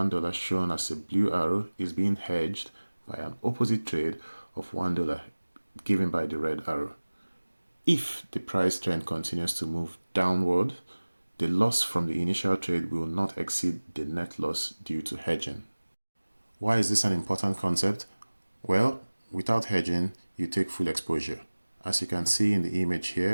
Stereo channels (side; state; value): both; inverted; correlation -1.00